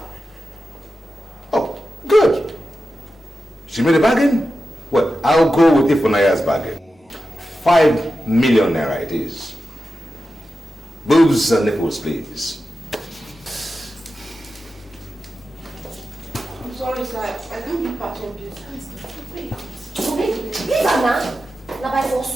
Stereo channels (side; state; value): both; normal; correlation 0.91